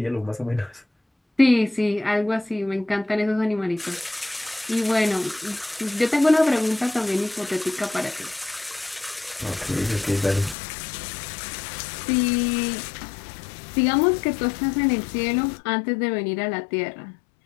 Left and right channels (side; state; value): right; drops out; at 10.6 s